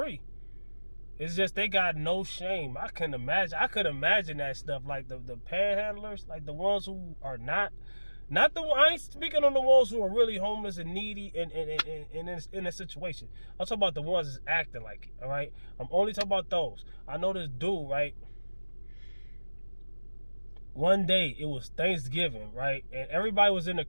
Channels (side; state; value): both; inverted; correlation -1.00